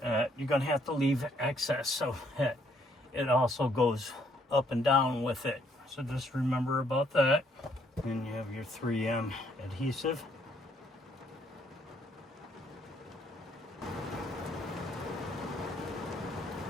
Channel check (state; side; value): normal; both; correlation 0.68